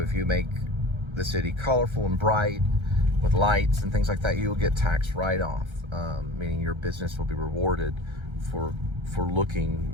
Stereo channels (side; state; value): left; late; 1.3 ms